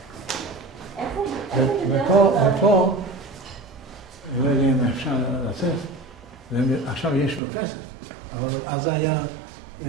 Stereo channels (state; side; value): drops out; left; at 7.4 s